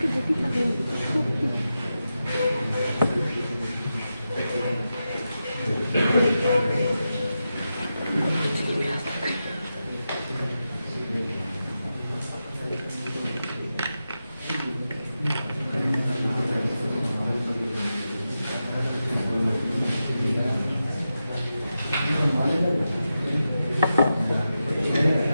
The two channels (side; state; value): both; inverted; correlation -0.90